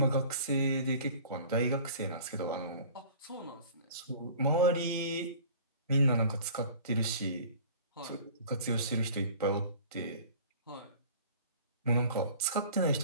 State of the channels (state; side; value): inverted; both; correlation -0.45